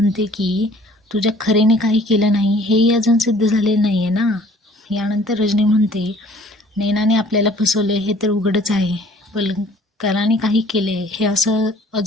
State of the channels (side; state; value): both; normal; correlation 0.54